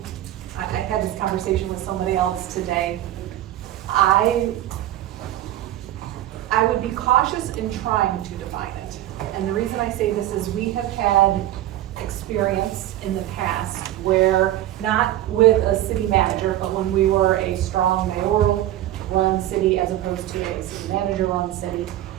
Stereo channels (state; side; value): quieter; left; 13.7 dB